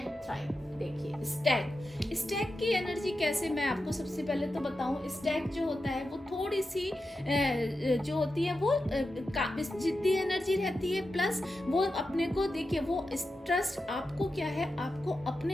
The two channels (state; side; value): normal; both; correlation 0.90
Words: थ्राइव। देखिए स्टैग की एनर्जी कैसे, मैं आपको सबसे पहले तो बताऊं, स्टैग जो होता है वो थोड़ी सी जो होती है वो जिद्दी एनर्जी रहती है, प्लस वो अपने को देखिए, वो ट्रस्ट आपको क्या है, आपको